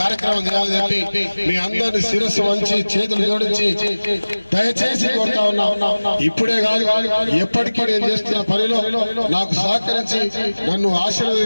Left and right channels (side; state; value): both; inverted; correlation -1.00